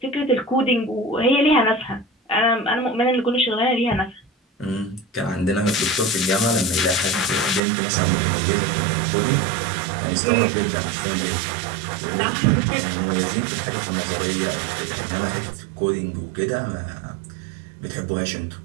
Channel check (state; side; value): drops out; left; at 7.6 s